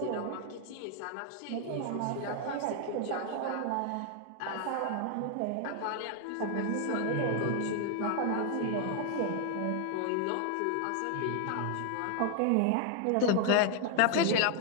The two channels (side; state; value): both; different; correlation 0.00